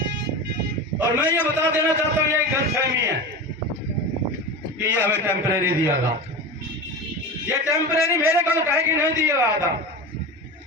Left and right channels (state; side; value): normal; both; correlation 0.27